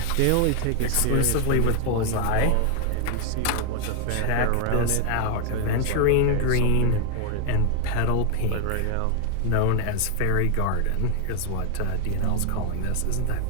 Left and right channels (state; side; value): different; both; correlation 0.00